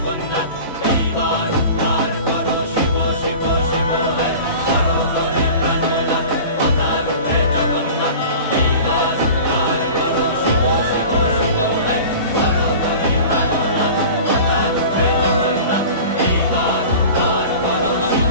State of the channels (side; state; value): both; inverted; correlation -0.39